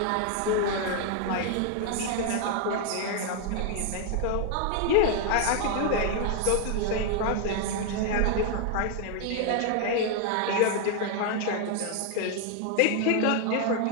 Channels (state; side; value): different; both; correlation 0.00